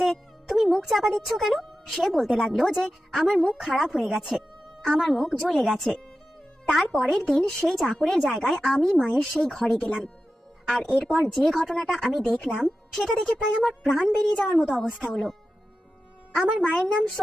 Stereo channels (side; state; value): both; normal; correlation 0.92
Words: যে তুমি মুখ চাপা দিচ্ছ কেন? সে বলতে লাগলো যে আমার মুখ খারাপ হয়ে গেছে, আমার মুখ জ্বলে গেছে। তার পরের দিন সেই চাকরের জায়গায় আমি মায়ের সেই ঘরে গেলাম। আর এরপর যে ঘটনাটা আমি দেখলাম, সেটা দেখে প্রায় আমার প্রাণ বেরিয়ে যাওয়ার মতো অবস্থা হলো। আমার মায়ের নাম